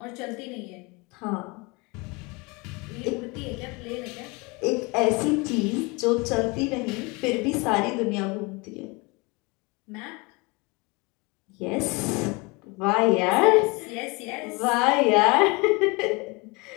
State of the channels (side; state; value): right; quieter; 27.1 dB